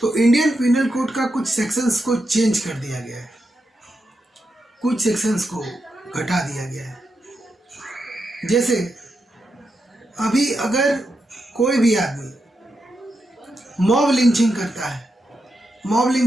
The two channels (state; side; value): normal; both; correlation 0.86